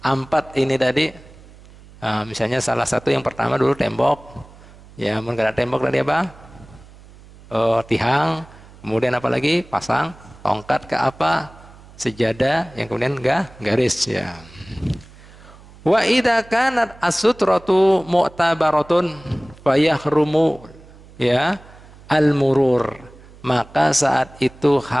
4 ini tadi, misalnya salah satu yang pertama dulu tembok, ya, mungkin ada tembok tadi apa? Tihang, kemudian apa lagi? Pasang tongkat ke apa? Sejadah, yang kemudian garis, ya. Wa idza kanat as-sutratu mu'tabaratun fayahrumu, ya, al-murur, maka saat itu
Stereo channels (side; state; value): right; noise; hum, 22 dB below the sound